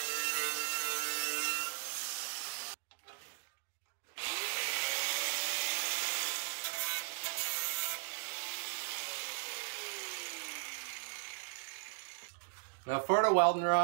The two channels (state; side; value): silent; left; digital silence